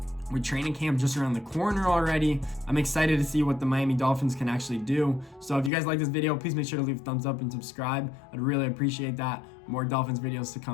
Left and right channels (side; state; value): right; drops out; at 5.7 s